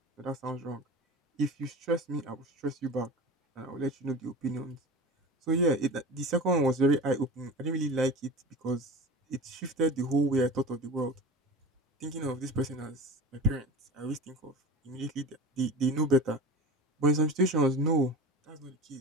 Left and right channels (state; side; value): normal; both; correlation 0.33